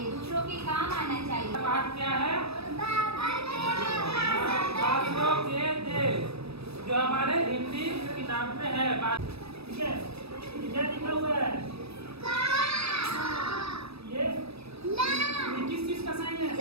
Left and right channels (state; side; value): late; left; 0.78 ms